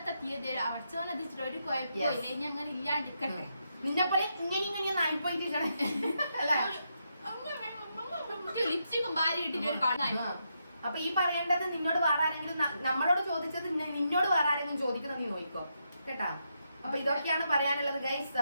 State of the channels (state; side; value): inverted; both; correlation -0.82